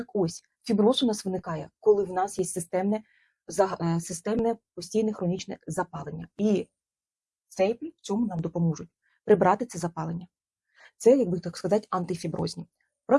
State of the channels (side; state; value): both; identical; correlation 1.00